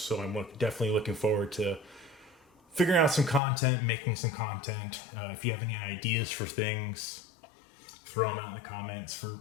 I'm definitely looking forward to figuring out some content, making some content. If you have any ideas for things, throw them out in the comments for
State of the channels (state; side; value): drops out; right; at 3.4 s